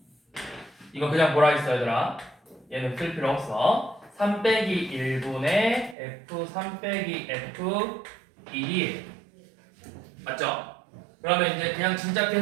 이거 그냥 뭐라 했어 얘들아? 얘는 쓸 필요 없어. 3 빼기 1분의 f3 빼기 f1이 맞죠? 그러면 이제 그냥 진짜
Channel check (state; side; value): drops out; left; at 6.0 s